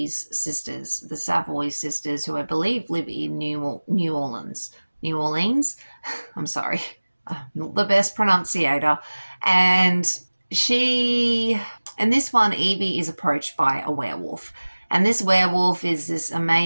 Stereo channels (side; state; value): both; inverted; correlation -1.00